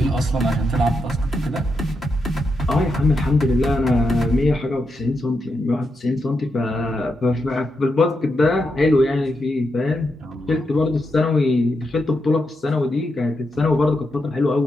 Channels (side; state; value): both; normal; correlation 0.84